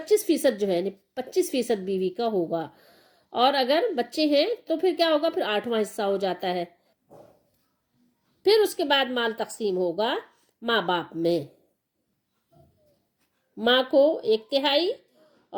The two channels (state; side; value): identical; both; correlation 1.00